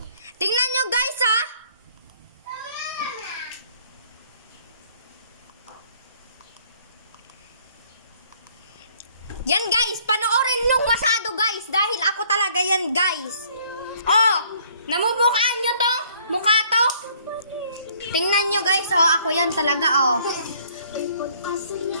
Tingnan nyo guys ha. Yan guys, panoorin nung masado guys. Dahil ako talaga yan guys. Oh, namumukhaan nyo to? Mukha to? Tingnan nyo guys, oh, ako yan talaga, oh.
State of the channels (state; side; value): inverted; both; correlation -0.60